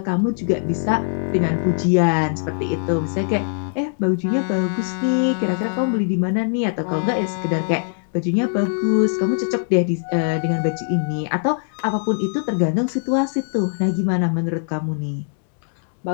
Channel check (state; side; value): silent; right; 65 dB below the other